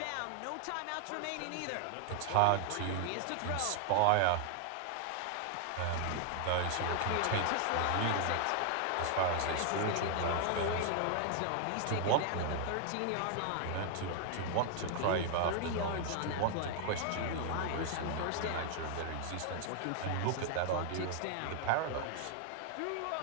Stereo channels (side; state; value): both; different; correlation 0.00